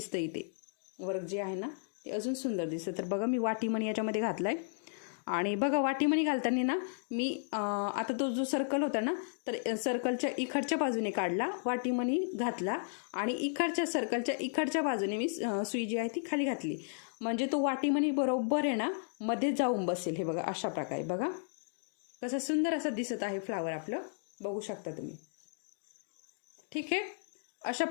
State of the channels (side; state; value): right; silent; digital silence